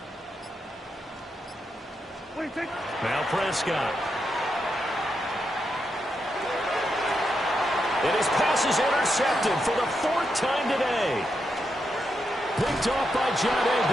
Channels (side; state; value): both; normal; correlation 0.84